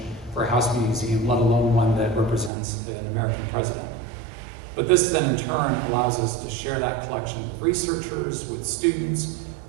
for a house museum, let alone one that represents an American president. But this then in turn allows us to share that collection with researchers, with students,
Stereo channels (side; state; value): left; drops out; at 2.5 s